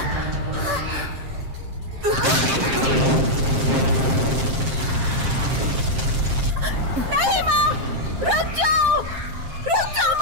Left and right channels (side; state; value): left; late; 7.6 ms